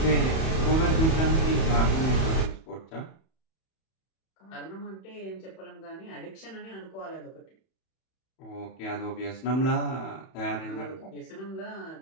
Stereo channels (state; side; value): late; right; 31 ms